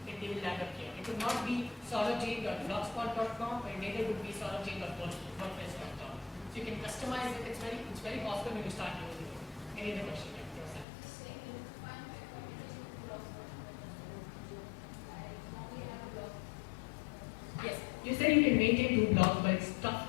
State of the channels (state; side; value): drops out; right; at 10.9 s